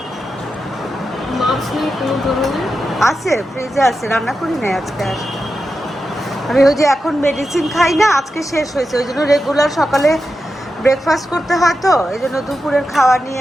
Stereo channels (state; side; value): normal; both; correlation 0.89